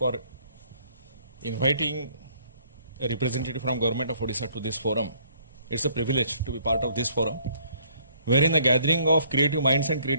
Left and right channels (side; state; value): both; inverted; correlation -0.63